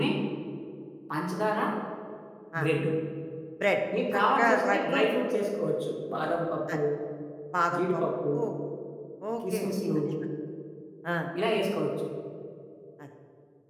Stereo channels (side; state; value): both; identical; correlation 1.00